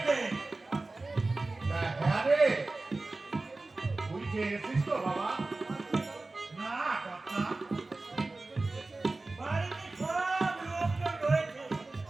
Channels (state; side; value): quieter; left; 3.2 dB